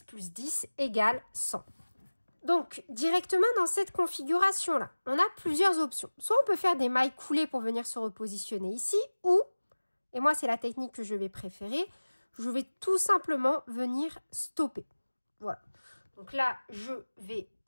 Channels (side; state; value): both; inverted; correlation -1.00